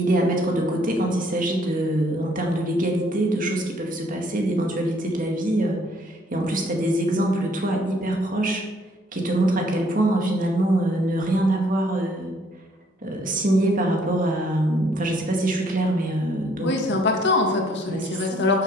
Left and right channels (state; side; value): normal; both; correlation 0.64